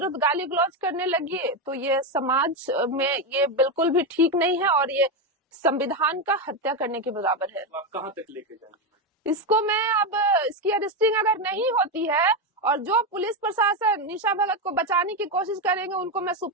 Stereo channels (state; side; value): normal; both; correlation 0.09